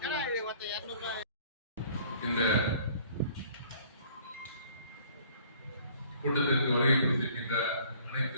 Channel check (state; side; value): inverted; both; correlation -0.55